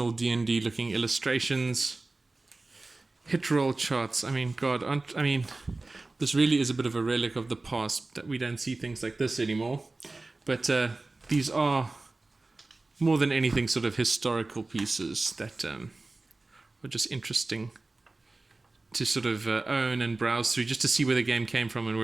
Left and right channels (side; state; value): left; quieter; 3.2 dB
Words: D&D looking illustrations. Hit roll charts. I mean, God, this really is a bit of a relic of the past that we don't see things like this anymore. But these are more than anything sort of historical pieces that are just interesting to sort of own and browse through, just to see where the game came from and